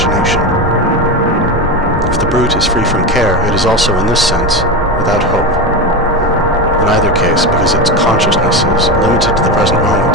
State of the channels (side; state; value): both; normal; correlation 0.18